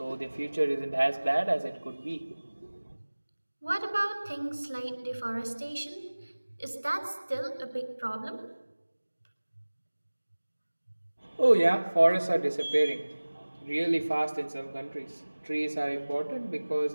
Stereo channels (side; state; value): both; inverted; correlation -1.00